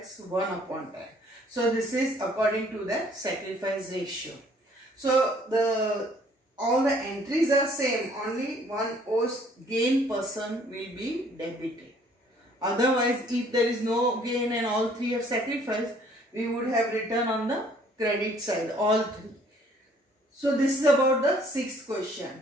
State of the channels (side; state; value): both; normal; correlation 0.60